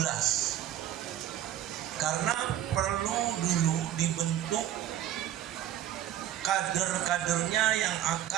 karena perlu dulu dibentuk kader-kadernya yang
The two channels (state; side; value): quieter; left; 12.0 dB